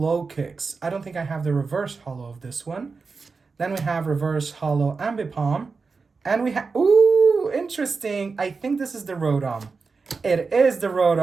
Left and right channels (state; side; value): quieter; left; 4.6 dB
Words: Kicks. I don't think I have the Reverse Hollow of this one. Then we have Reverse Hollow Ambipom. And we have, ooh, interesting. I think this is the Rotom. It is the